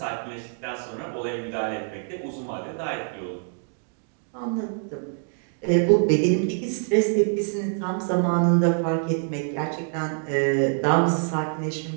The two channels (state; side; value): silent; left; 61 dB below the other